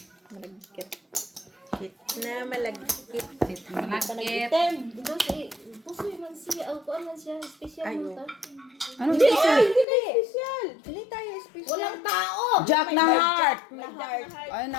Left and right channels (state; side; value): drops out; right; at 9.9 s